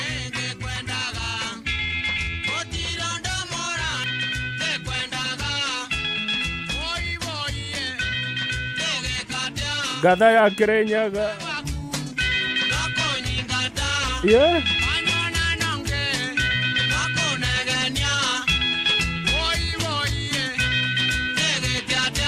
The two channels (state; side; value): identical; both; correlation 1.00